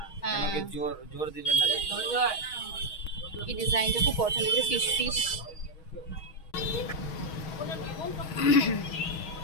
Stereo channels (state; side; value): late; right; 6.3 ms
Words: কেন কি জোর জোর দিবেন না। এই ডিজাইনটা খুব পছন্দ হয়েছে, ফিশ ফিশ।